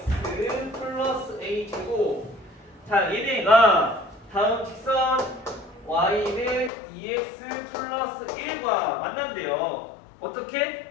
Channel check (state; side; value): drops out; right; at 6.7 s